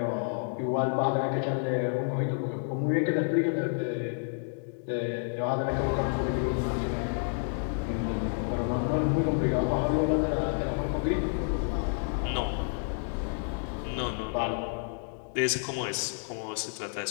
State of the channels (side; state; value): right; silent; 58 dB below the other